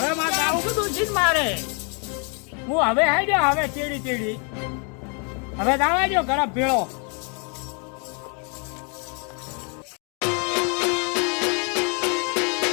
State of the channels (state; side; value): quieter; right; 37.0 dB